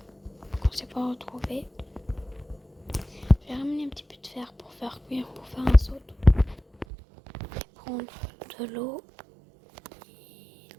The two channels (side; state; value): left; drops out; at 6.9 s